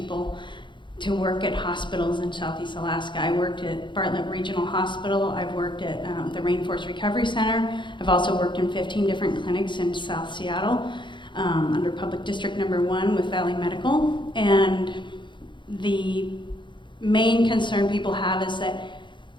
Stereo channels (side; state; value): right; late; 0.23 ms